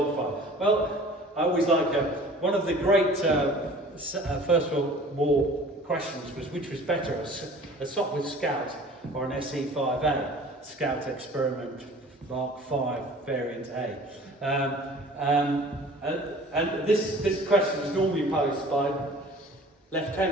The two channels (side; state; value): both; normal; correlation 0.46